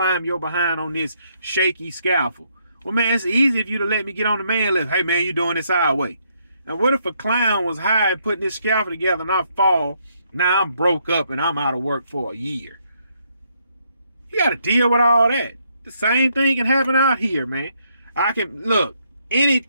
your behind on this shaky scaffold. Well, man, it's easy if you to let me get on the man lift. Hey, man, you doing this our way. Now, what if a clown was high putting this scaffold together and I fall? Now I'm broke up and I'm out of work for a year. You got to deal with all that. The same thing can happen out here, man. Look,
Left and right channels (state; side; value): inverted; both; correlation -0.73